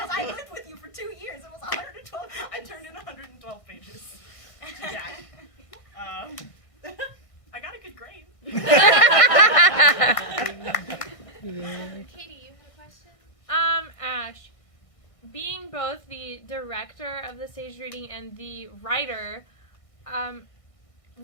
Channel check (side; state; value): right; late; 1.6 ms